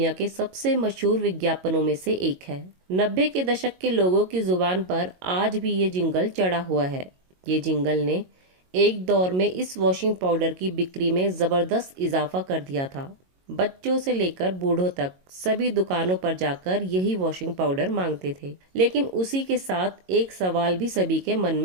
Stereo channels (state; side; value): late; left; 22 ms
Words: के सबसे मशहूर विज्ञापनों में से एक है। 90 के दशक के लोगों की जुबान पर आज भी ये जिंगल चढ़ा हुआ है। ये जिंगल ने एक दौर में इस वॉशिंग पाउडर की बिक्री में जबरदस्त इजाफा कर दिया था। बच्चों से लेकर बूढ़ों तक सभी दुकानों पर जाकर यही वॉशिंग पाउडर मांगते थे। लेकिन उसी के साथ एक सवाल भी सभी के मन